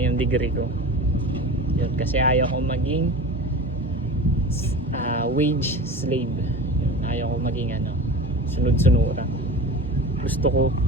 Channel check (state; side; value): normal; both; correlation 0.32